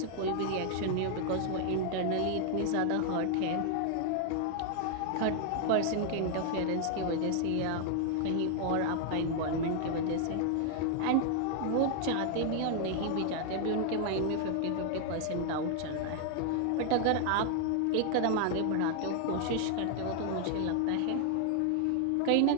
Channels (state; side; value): different; both; correlation 0.00